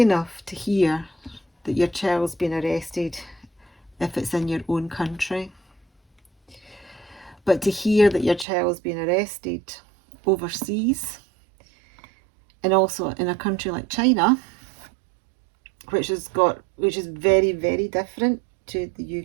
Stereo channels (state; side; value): drops out; left; at 8.5 s